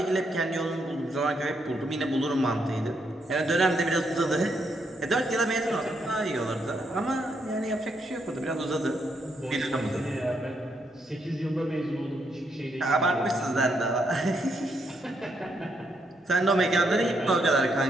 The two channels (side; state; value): both; normal; correlation 0.77